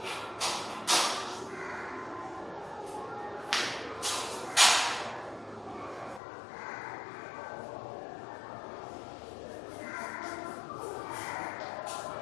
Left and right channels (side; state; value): right; drops out; at 6.2 s